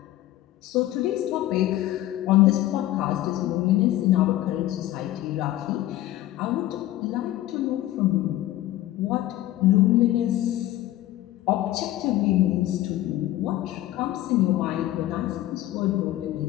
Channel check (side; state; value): right; quieter; 14.9 dB